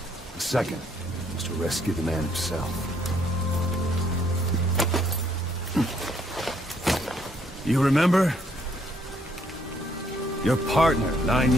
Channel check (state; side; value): normal; both; correlation 0.68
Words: The second was to rescue the man himself. You remember? Your partner, 9